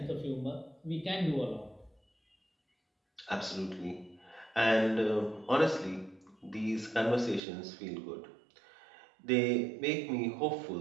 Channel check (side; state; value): left; drops out; at 7.4 s